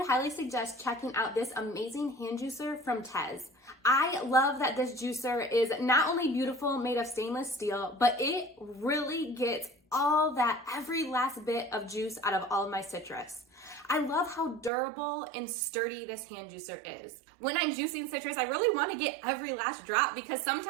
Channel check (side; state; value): left; drops out; at 14.7 s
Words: highly suggest checking out this amazing hand juicer from TEZZ. I love that this juicer is not only beautiful, made of stainless steel, but it really gets all that every last bit of juice out of all of my citrus. I love how durable and sturdy this hand juicer is. When I'm juicing citrus, I really want to get every last drop because